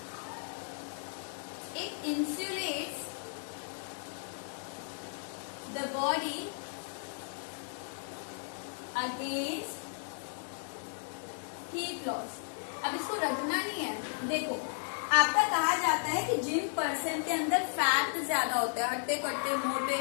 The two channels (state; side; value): silent; right; 55 dB below the other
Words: it insulates the body against heat loss। अब इसको रखना नहीं है। देखो आपका कहा जाता है कि जिन पर्सन के अंदर फैट ज्यादा होता है, हट्टे कट्टे मोटे